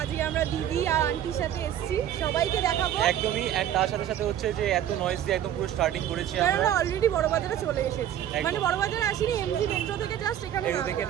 আজকে আমরা দিদি আর আন্টির সাথে এসেছি, সবাইকে দেখাবো। একদমই, এন্ড তার সাথে সাথে হচ্ছে যে এত নয়েজ দিয়ে একদম পুরো স্টার্টিং করেছি আমরা অলরেডি বড় বাজারে চলে এসেছি। মানে বড় বাজারে আসিনি, এমজি মেট্রো থেকে জাস্ট এখানে দেখে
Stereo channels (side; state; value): left; quieter; 10.9 dB